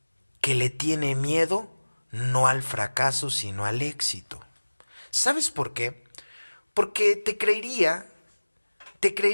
que le tiene miedo no al fracaso, sino al éxito. ¿Sabes por qué? Porque te creería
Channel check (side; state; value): both; inverted; correlation -1.00